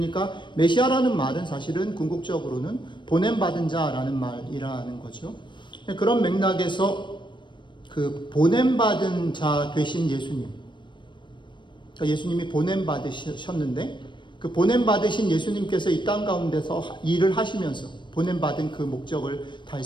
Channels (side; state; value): right; late; 0.23 ms